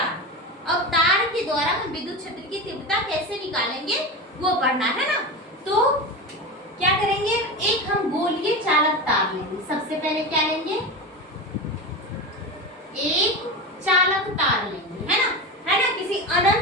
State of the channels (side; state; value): both; normal; correlation 0.23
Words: अब तार के द्वारा हम विद्युत क्षेत्र की तीव्रता कैसे निकालेंगे वो पढ़ना है ना। तो क्या करेंगे, एक हम गोलीय चालक तार लेंगे। सबसे पहले क्या लेंगे, एक चालक तार लेंगे, है ना, किसी